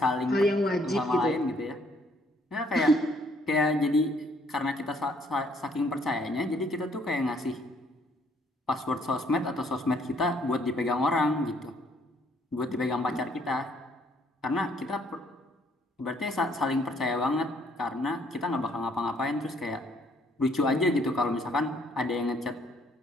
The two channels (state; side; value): normal; both; correlation 0.66